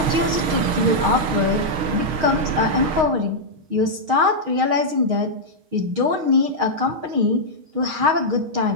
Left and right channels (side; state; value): left; late; 6.4 ms